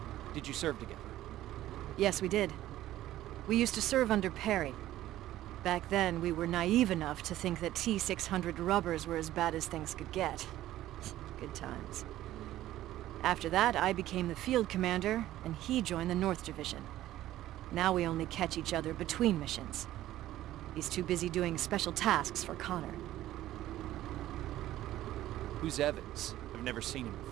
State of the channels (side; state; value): left; quieter; 14.2 dB